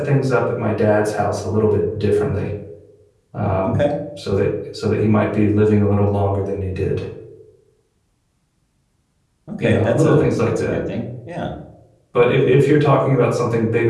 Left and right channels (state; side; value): identical; both; correlation 1.00